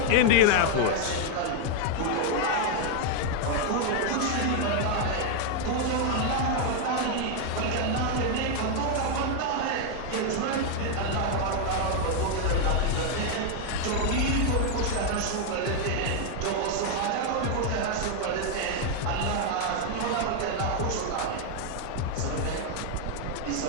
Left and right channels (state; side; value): different; both; correlation 0.00